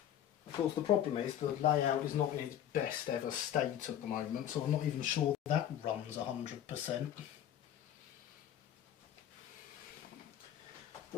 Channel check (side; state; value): right; quieter; 10.6 dB